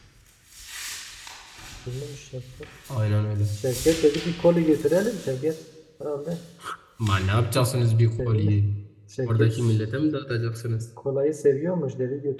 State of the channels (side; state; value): both; identical; correlation 1.00